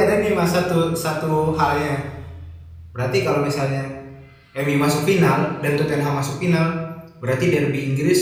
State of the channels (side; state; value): both; identical; correlation 1.00